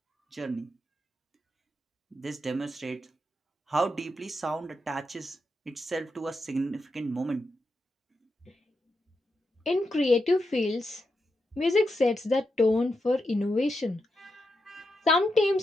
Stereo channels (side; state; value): both; normal; correlation 0.85